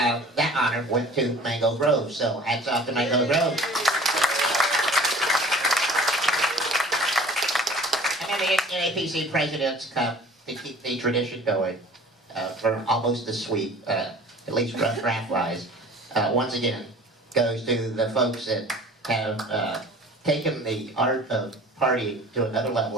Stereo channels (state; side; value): normal; both; correlation 0.46